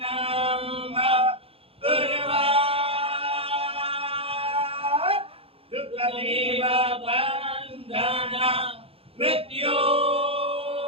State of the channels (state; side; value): late; left; 0.27 ms